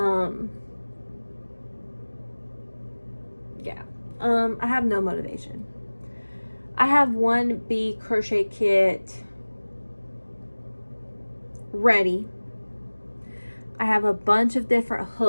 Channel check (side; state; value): both; inverted; correlation -1.00